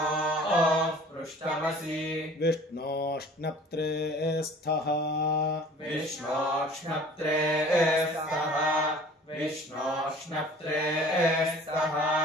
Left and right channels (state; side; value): normal; both; correlation 0.48